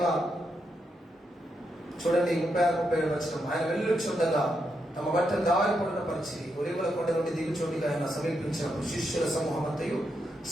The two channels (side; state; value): both; normal; correlation 0.82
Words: చూడండి 36-37 వచనం, ఆయన వెళ్ళుచుండగా తమ బట్టలు దారిపడిన పరిచి ఒలీవల కొండ నుండి దిగుచోటిగా ఆయన సమీపించినప్పుడు శిష్యుల సమూహం అంతయు